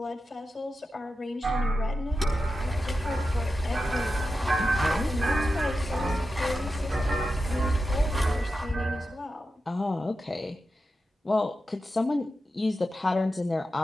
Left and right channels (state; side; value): normal; both; correlation 0.91